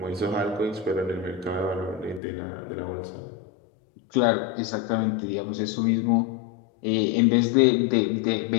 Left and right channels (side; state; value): right; drops out; at 2.2 s